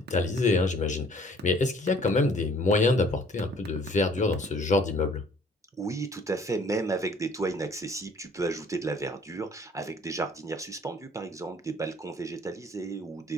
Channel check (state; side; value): normal; both; correlation 0.56